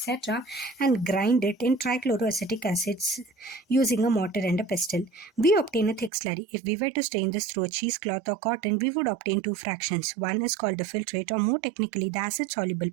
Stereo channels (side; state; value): left; drops out; at 6.1 s